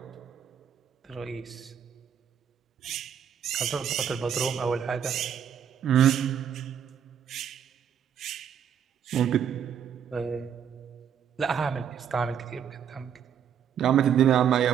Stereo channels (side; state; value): left; quieter; 8.5 dB